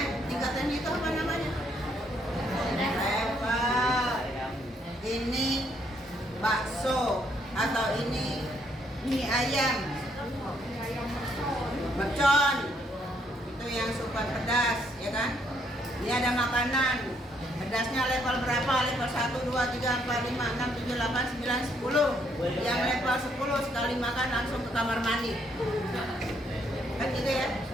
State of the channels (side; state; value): both; normal; correlation 0.71